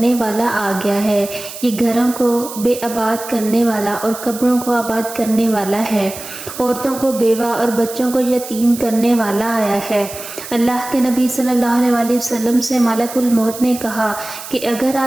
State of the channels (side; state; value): right; noise; hiss, 12 dB below the sound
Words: والا آ گیا ہے، یہ گھروں کو بے آباد کرنے والا اور قبروں کو آباد کرنے والا ہے، عورتوں کو بیوہ اور بچوں کو یتیم کرنے والا آیا ہے۔ اللہ کے نبی صلی اللہ علیہ وآلہ وسلم سے ملک الموت نے کہا کہ اگر